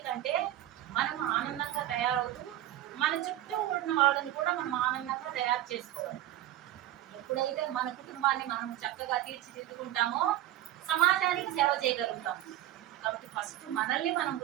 మనం ఆనందంగా తయారవుతూ మన చుట్టూ ఉన్న వాళ్ళని కూడా మనం ఆనందంగా తయారు చేసుకోవాలి. ఎప్పుడైతే మన కుటుంబాన్ని మనం చక్కగా తీర్చిదిద్దుకుంటామో సమాజానికి సేవ చేయగలుగుతాం. కాబట్టి ఫస్ట్ మనల్ని మనం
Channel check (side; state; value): left; quieter; 13.6 dB